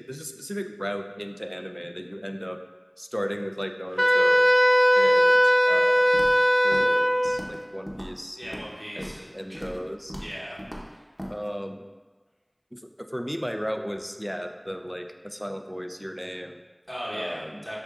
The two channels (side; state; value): both; identical; correlation 1.00